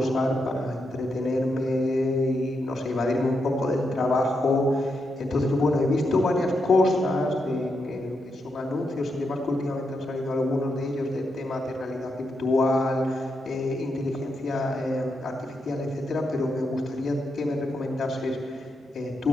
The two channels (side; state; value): both; normal; correlation 0.83